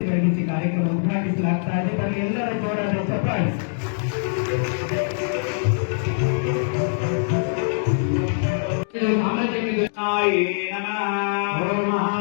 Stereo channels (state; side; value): silent; right; digital silence